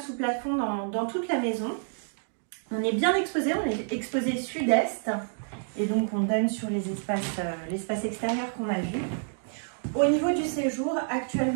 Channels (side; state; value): left; silent; digital silence